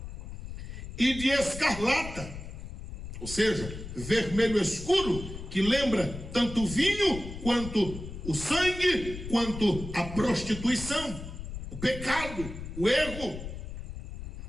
e de escarlata, ou seja, vermelho escuro, que lembra tanto o vinho, quanto o sangue, quanto a prostituição, o pecado, o erro,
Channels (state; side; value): noise; left; rumble, 10 dB below the sound